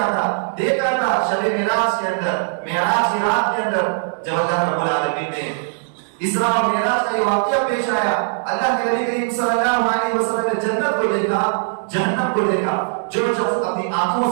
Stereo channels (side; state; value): left; silent; digital silence